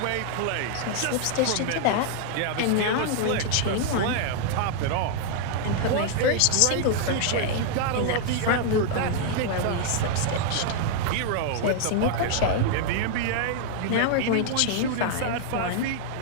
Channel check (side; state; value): both; different; correlation -0.01